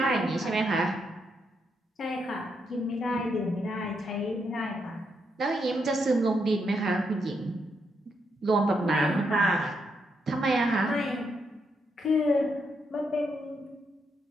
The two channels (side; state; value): both; normal; correlation 0.79